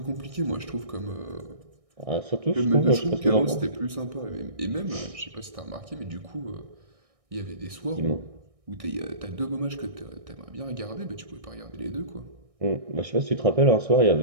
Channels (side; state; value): left; late; 1.6 ms